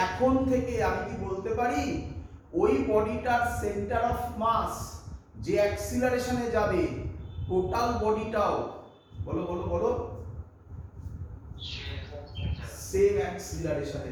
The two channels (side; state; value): both; identical; correlation 1.00